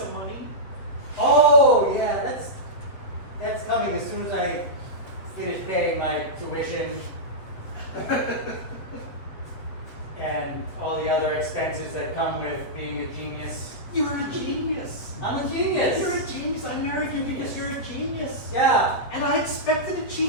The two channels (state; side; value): late; right; 7.9 ms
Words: money? Oh, yeah, that's coming as soon as I finish paying my tuition and all the other expenses that come with being a genius. You're a genius. I'm a genius. You're a genius. I married you because you're a genius. Yeah, And I expected a